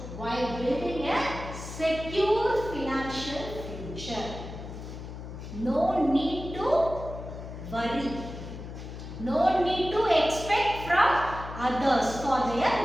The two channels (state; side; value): noise; left; hum, 10 dB below the sound